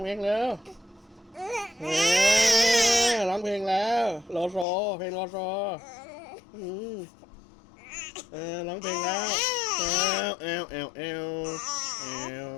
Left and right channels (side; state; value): right; drops out; at 4.7 s